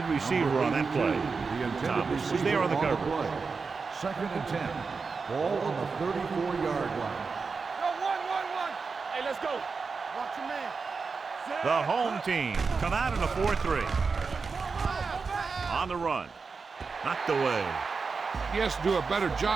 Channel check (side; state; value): left; quieter; 4.8 dB